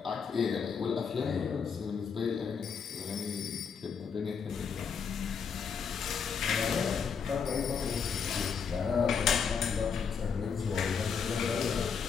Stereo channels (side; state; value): right; quieter; 6.3 dB